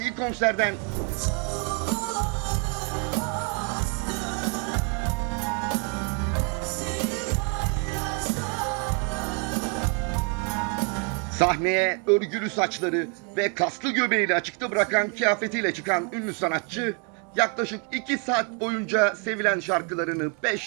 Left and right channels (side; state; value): left; quieter; 36.9 dB